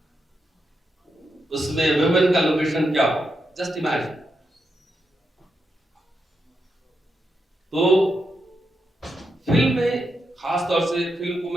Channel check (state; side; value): normal; both; correlation 0.84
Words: उसमें वुमेन का लोकेशन क्या होगा, जस्ट इमेजिन। तो फिल्म में खास तौर से फिल्म को